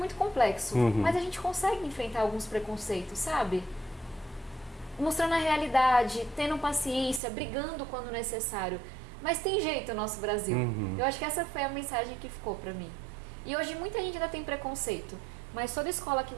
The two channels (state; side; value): drops out; left; at 7.2 s